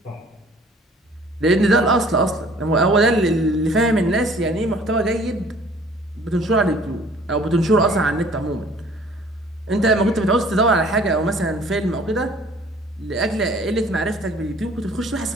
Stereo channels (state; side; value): normal; both; correlation 0.53